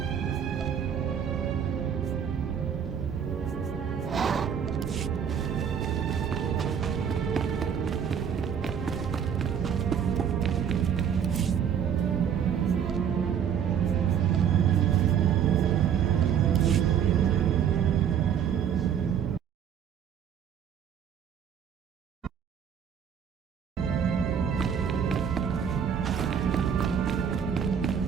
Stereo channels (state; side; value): quieter; left; 8.2 dB